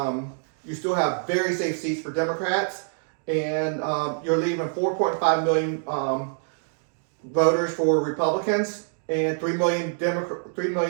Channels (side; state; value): left; silent; digital silence